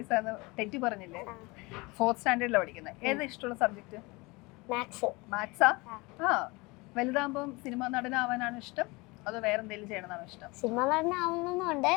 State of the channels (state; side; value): quieter; right; 24.8 dB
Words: തെറ്റി പറഞ്ഞില്ലേ? 4th സ്റ്റാൻഡേർഡിലാണ് പഠിക്കുന്നത്. ഏതാ ഇഷ്ടമുള്ള സബ്ജക്ട്? മാത്സാ? വലുതാകുമ്പം സിനിമ നടനാവാനാണ് ഇഷ്ടം, അതോ വേറെ എന്തെങ്കിലും ചെയ്യണമെന്നാണ് ഇഷ്ടം? സിനിമ നടനാവുന്നുണ്ട്,